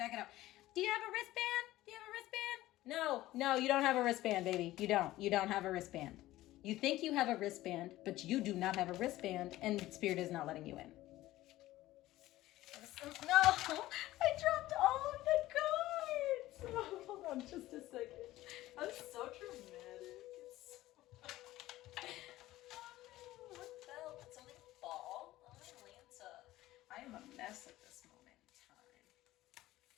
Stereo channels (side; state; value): right; quieter; 16.2 dB